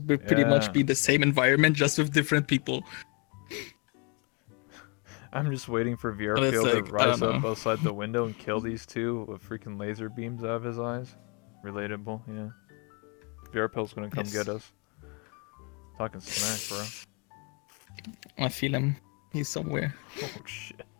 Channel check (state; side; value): quieter; right; 32.9 dB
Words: Yeah. much be the same environment, just with different people. I'm just waiting for But it's VRPL to like, I rise don't up know. outside the window and kill these two with freaking laser beams out of his eyes. Relatable, yeah. VRPL's gonna come Yes. get us. Talking smack, bro. I feel him. He's somewhere. Oh shit.